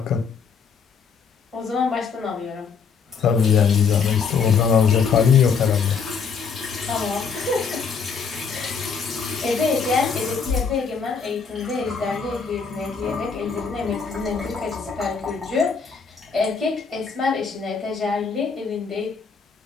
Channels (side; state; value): right; quieter; 5.7 dB